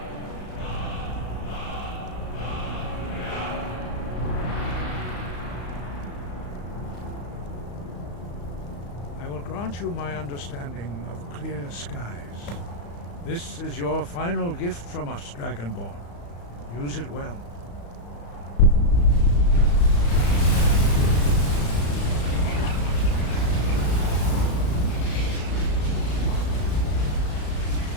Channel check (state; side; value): late; right; 35 ms